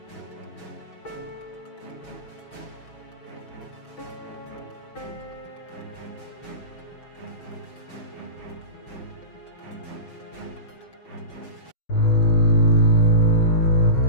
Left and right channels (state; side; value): late; right; 6.2 ms